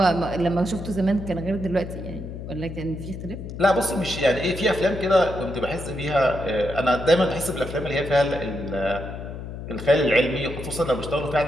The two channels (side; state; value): left; noise; hum, 9 dB below the sound